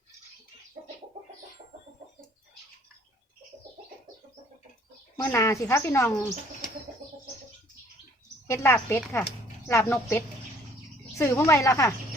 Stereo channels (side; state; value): both; normal; correlation 0.58